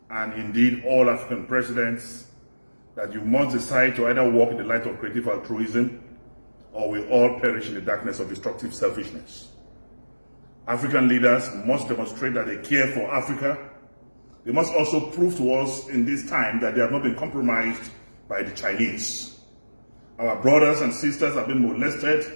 and indeed all African presidents, that you must decide to either walk in the light of creative altruism or we all perish in the darkness of destructive selfishness. African leaders must demonstrate that they care for Africa. They must also prove to us in this time that they have not been compromised by the Chinese. Our brothers and sisters have been molested,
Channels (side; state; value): both; inverted; correlation -1.00